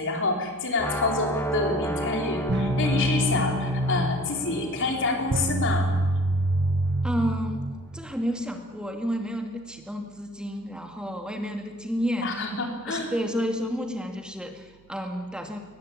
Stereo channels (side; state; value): right; noise; hum, 29 dB below the sound